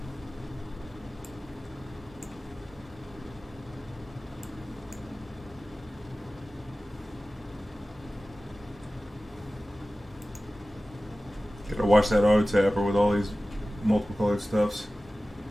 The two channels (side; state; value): both; normal; correlation 0.96